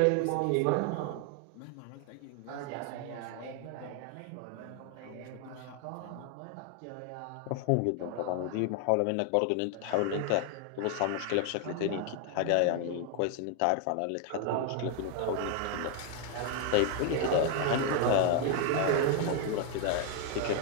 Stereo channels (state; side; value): different; both; correlation 0.00